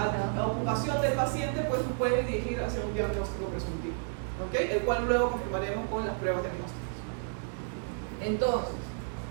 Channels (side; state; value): left; silent; digital silence